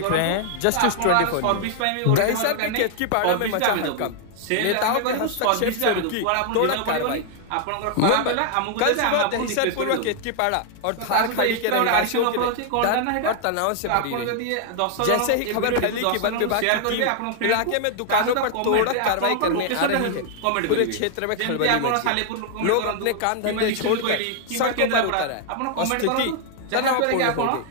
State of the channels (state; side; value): different; both; correlation 0.00